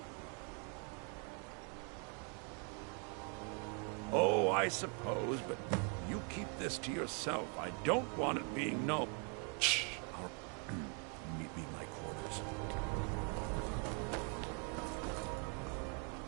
Oh, I suppose, but you keep this to yourself. I don't want it being known. Shh. I'll meet me in my quarters.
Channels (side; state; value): left; quieter; 37.9 dB